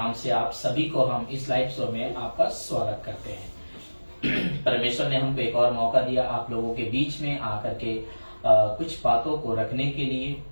से आप सभी को हम इस लाइव शो में आपका स्वागत करते हैं। परमेश्वर ने हमको एक और मौका दिया आप लोगों के बीच में आकर के कुछ बातों को रखने के लिए,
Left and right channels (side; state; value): both; inverted; correlation -1.00